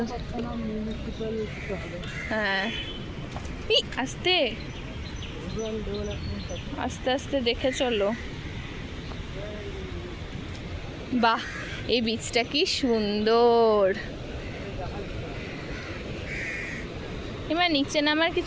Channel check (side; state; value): both; identical; correlation 1.00